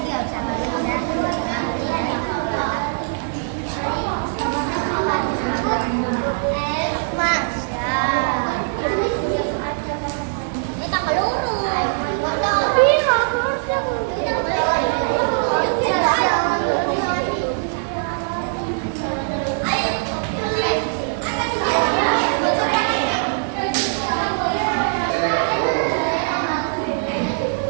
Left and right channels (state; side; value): silent; left; digital silence